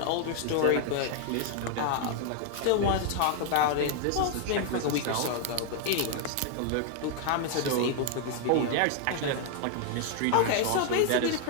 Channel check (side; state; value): both; different; correlation 0.00